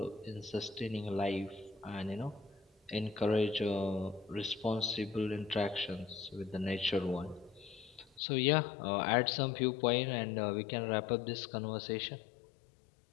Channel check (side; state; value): right; drops out; at 8.2 s